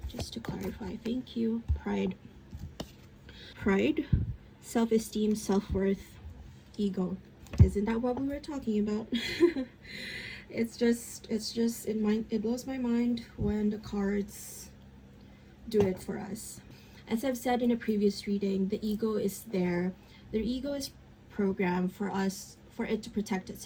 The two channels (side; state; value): both; identical; correlation 1.00